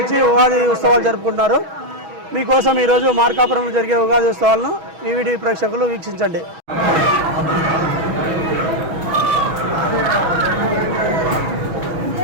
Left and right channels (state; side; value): late; left; 6.3 ms